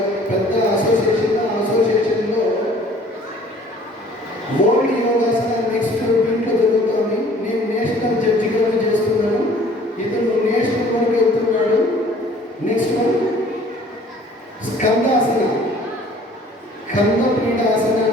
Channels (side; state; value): both; normal; correlation 0.53